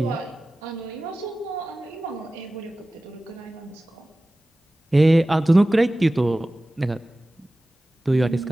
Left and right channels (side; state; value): both; normal; correlation 0.96